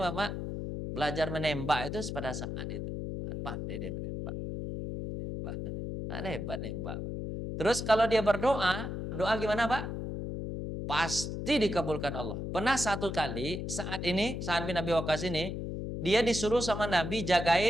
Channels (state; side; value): noise; left; hum, 5 dB below the sound